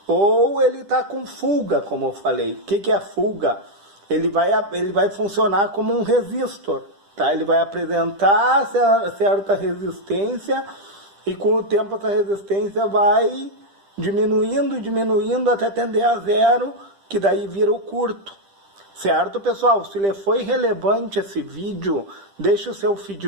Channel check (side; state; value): left; late; 10 ms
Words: Ou ele está com fuga, como eu falei. O que é fuga? Ele vai funcionar como um resistor. Tá? Ele vai apresentar certa resistência e com o tempo essa resistência vai diminuindo até tender a zero, que daí vira o curto. Certo, pessoal? Se lhe foi relevante esse vídeo, deixe o seu